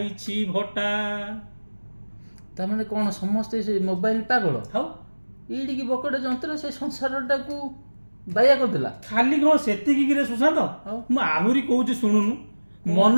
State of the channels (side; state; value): both; inverted; correlation -1.00